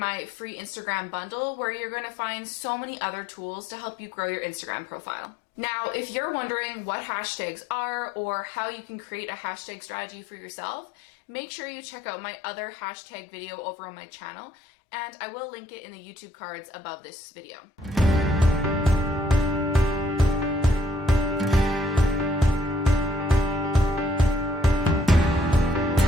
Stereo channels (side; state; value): both; normal; correlation 0.65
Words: free Instagram bundle where you're going to find so many other tools to help you grow your Instagram profile. Now, if you're wondering what hashtags are or how you can create a hashtag strategy for yourself, make sure you check out my other hashtag video over on my channel, and I will link it in the YouTube cards above this video.